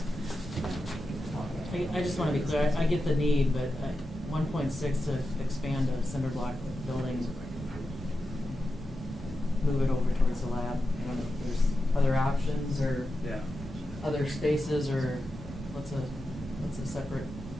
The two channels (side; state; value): both; normal; correlation 0.90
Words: I just want to be clear, I get the need, but 1.6 to expand a cinder block building, move it over towards the lab. I don't know if there's other options or Yeah. other spaces, or what's a separate